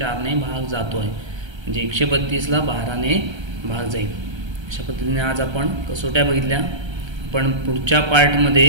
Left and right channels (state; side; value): late; left; 1.3 ms